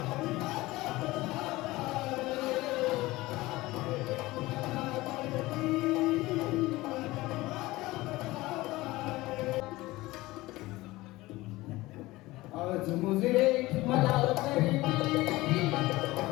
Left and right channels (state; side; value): quieter; right; 19.4 dB